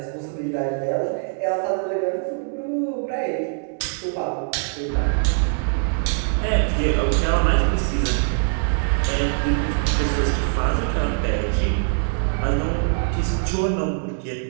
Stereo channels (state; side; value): silent; left; digital silence